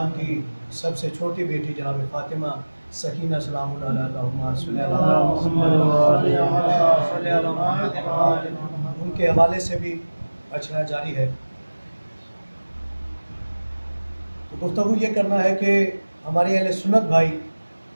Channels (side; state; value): both; inverted; correlation -1.00